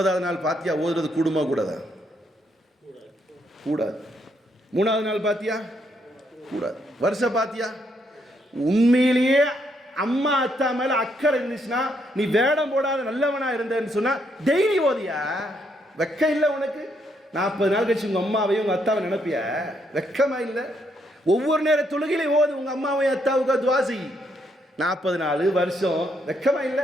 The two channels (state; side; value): normal; both; correlation 0.75